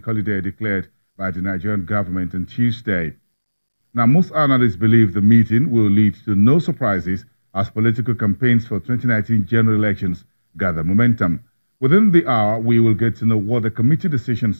holiday declared by the Nigerian government on Tuesday. Now, most analysts believe the meeting will lead to no surprises as political campaigns for 2019 general elections gather momentum. Within the hour, we will get to know what the committee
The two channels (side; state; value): both; inverted; correlation -1.00